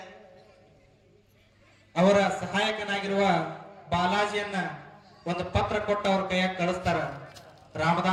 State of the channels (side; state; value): both; identical; correlation 1.00